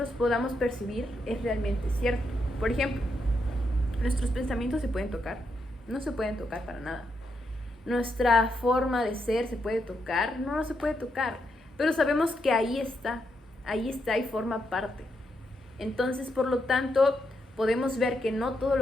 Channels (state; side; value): normal; both; correlation 0.81